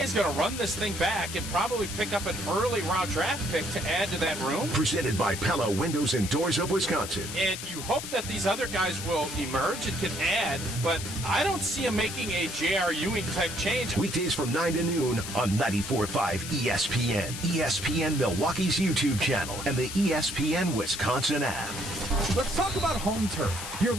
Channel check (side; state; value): left; noise; hiss, 8 dB below the sound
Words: is going to run this thing back and probably pick up an early round draft pick to add to that room. Presented by Pella Windows and Doors of Wisconsin. And you hope that these other guys will emerge and can add, but I don't see them making a J.R. Ewing type change. Weekdays from 9 to noon on 94.5 ESPN, ESPN Milwaukee's YouTube channel, and the ESPN Wisconsin app. Let's talk about home turf. Your